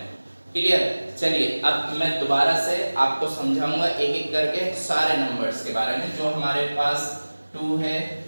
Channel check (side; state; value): both; inverted; correlation -1.00